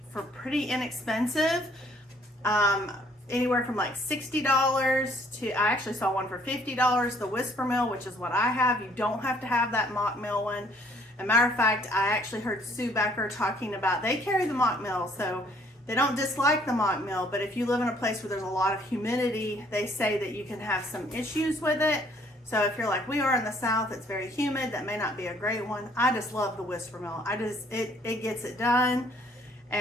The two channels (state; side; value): normal; both; correlation 0.62